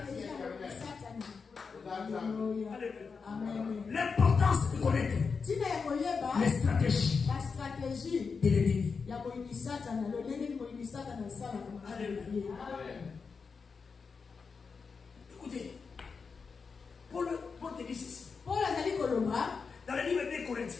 L'importance de connaître les stratégies de l'ennemi. Écoutez, Paul te dit ceci. Dans le livre des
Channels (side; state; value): right; quieter; 5.2 dB